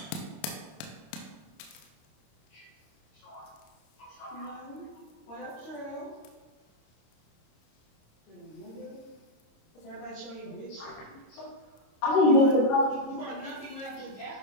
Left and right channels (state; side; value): late; right; 26 ms